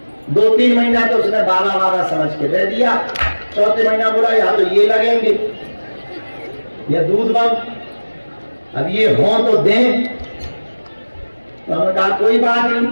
2-3 महीना तो उसने बाबा समझ के दे दिया। चौथे महीना बोला या तो ये लगेंगे या दूध बंद, अब ये हो तो दें। तो हमने कहा कोई बात नहीं।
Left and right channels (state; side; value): inverted; both; correlation -1.00